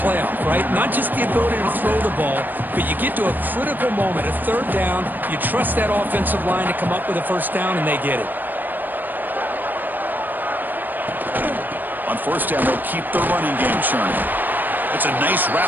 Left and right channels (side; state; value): left; late; 0.089 ms